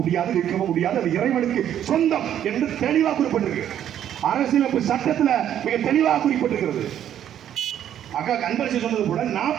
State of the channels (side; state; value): left; quieter; 10.4 dB